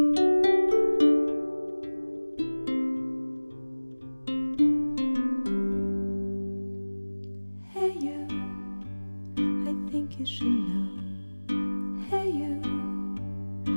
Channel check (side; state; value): both; inverted; correlation -1.00